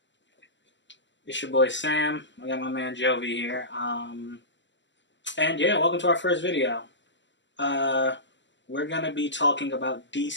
It's your boy Sam. I got my man Jovi here. And yeah, welcome to our first video. Uh, we're gonna be talking about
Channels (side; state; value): right; late; 0.53 ms